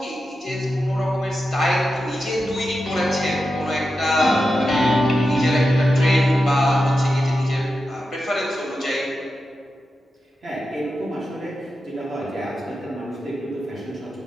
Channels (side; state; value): both; normal; correlation 0.90